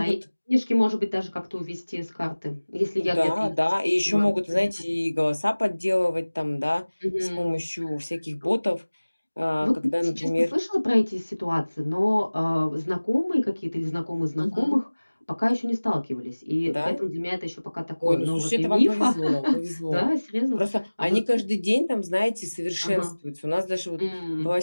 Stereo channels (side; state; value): both; inverted; correlation -1.00